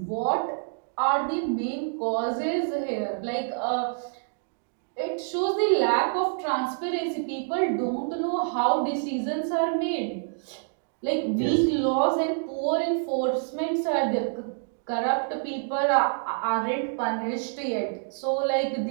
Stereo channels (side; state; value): left; silent; digital silence